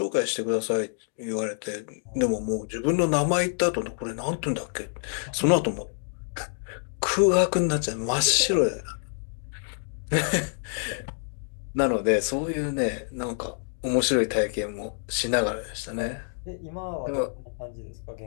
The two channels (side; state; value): right; silent; 59 dB below the other